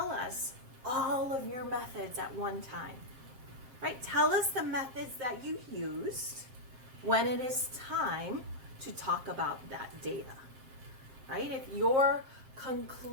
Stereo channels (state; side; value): late; left; 7.5 ms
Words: us all of your methods at one time, right? Tell us the methods that you used when it is time to talk about that data, right? If you're